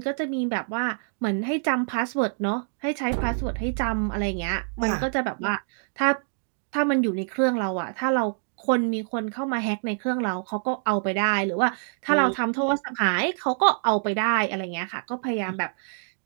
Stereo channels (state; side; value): silent; left; digital silence